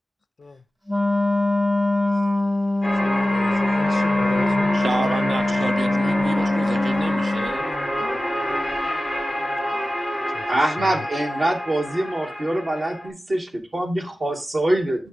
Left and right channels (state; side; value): normal; both; correlation 0.95